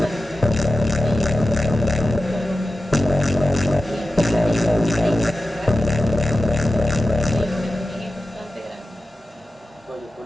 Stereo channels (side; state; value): both; normal; correlation 0.93